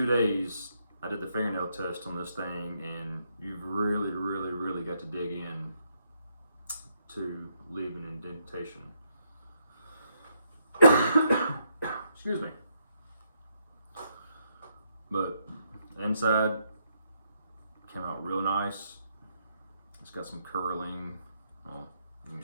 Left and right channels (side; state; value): both; inverted; correlation -0.76